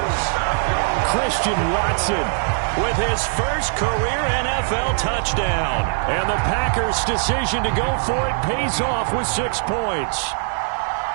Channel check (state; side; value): silent; left; digital silence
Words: Christian Watson with his first career NFL touchdown. And the Packers' decision to go for it pays off with 6 points.